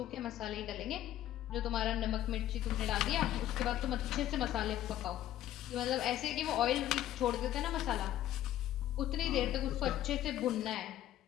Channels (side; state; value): right; quieter; 12.9 dB